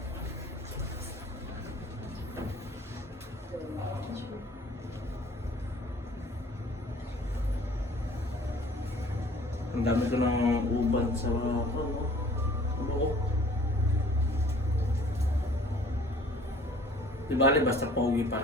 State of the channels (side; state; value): both; normal; correlation 0.52